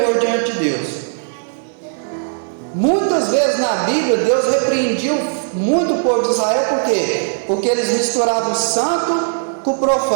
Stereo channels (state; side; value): silent; left; 68 dB below the other